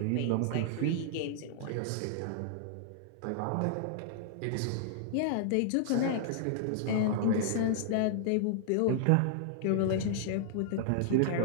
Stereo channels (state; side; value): different; both; correlation -0.01